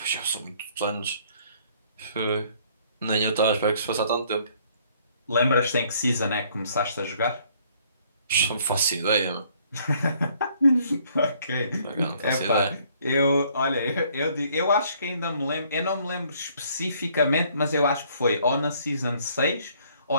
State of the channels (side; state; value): both; inverted; correlation -0.62